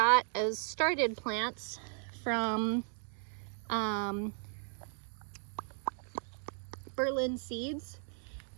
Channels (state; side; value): silent; left; 54 dB below the other